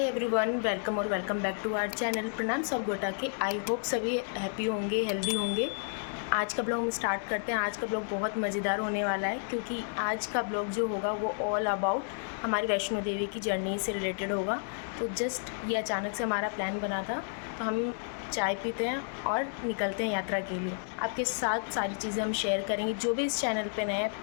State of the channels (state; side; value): silent; right; digital silence